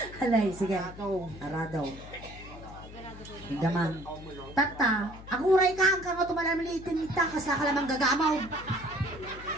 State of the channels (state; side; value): noise; left; hum, 15 dB below the sound